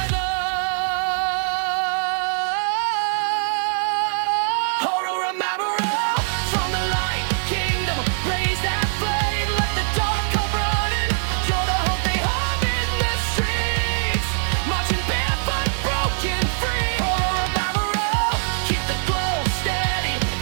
Horohamaro, from the light kingdom, raise that flame, let the dark come running. You're the hope they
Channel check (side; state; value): left; silent; digital silence